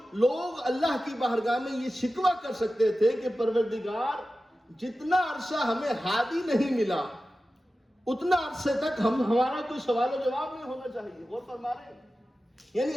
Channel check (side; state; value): both; normal; correlation 0.94